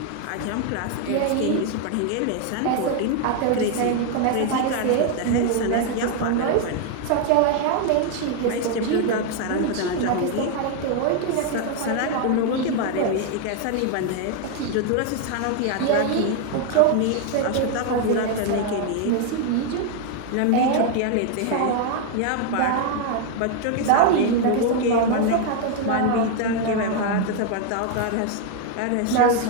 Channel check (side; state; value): both; different; correlation 0.00